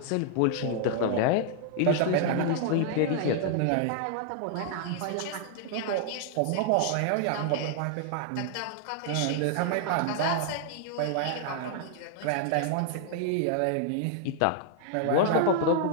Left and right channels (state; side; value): different; both; correlation 0.00